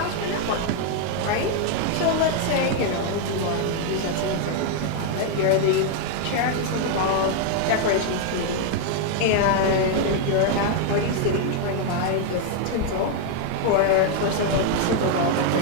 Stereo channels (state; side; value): different; both; correlation 0.00